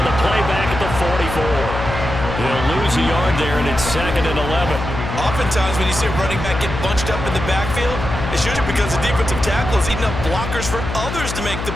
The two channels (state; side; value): noise; left; hum, 6 dB below the sound